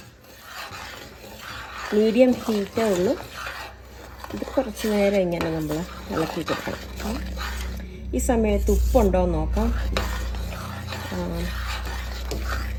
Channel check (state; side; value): identical; both; correlation 1.00